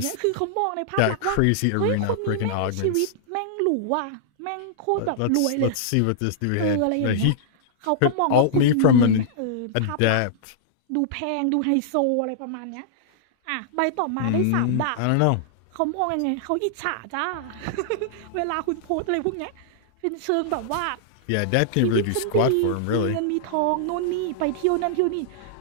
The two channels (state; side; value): different; both; correlation -0.01